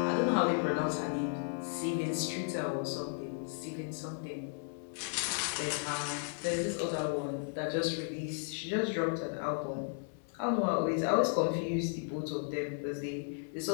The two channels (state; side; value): silent; right; 55 dB below the other